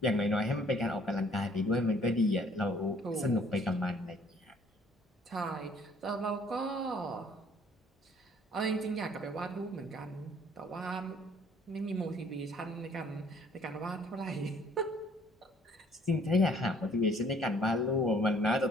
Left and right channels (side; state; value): both; normal; correlation 0.59